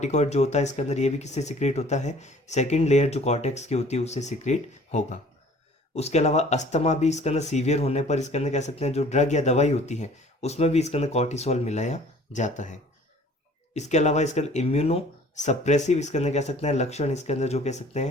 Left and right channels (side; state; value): both; normal; correlation 0.51